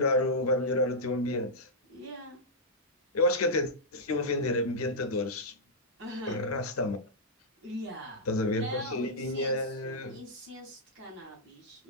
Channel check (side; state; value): both; normal; correlation -0.10